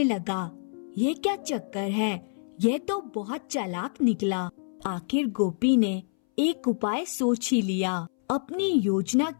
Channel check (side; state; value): right; silent; 60 dB below the other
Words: लगा, यह क्या चक्कर है? यह तो बहुत चालाक निकला। आखिर गोपी ने एक उपाय सोच ही लिया। अपनी योजना